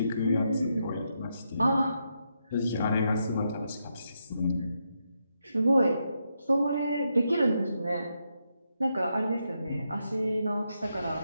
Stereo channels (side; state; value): both; inverted; correlation -0.82